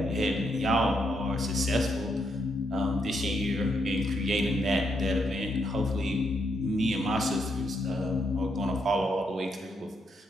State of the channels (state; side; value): normal; both; correlation 0.78